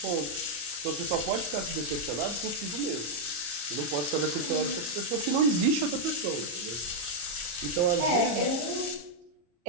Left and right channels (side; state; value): left; late; 34 ms